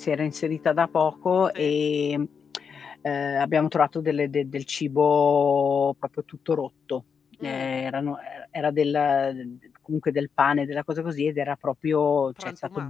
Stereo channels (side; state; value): right; quieter; 6.4 dB